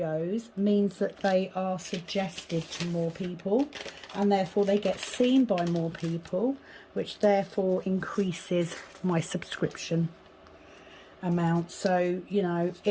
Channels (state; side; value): identical; both; correlation 1.00